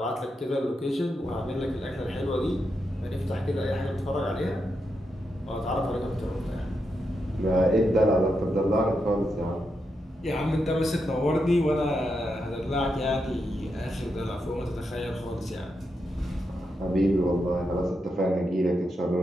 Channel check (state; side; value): normal; both; correlation 0.84